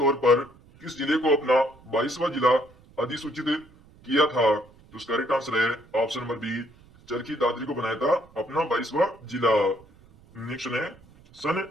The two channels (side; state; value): right; noise; rumble, 26 dB below the sound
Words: पर किस जिले को अपना 22वां जिला अधिसूचित किया था? तो इसका करेक्ट आंसर है option number B, Charkhi Dadri को बनाया था अपना 22वां जिला। नेक्स्ट है, सन